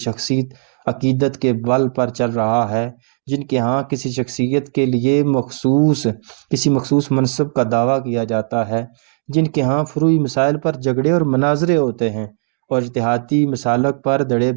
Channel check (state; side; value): silent; left; digital silence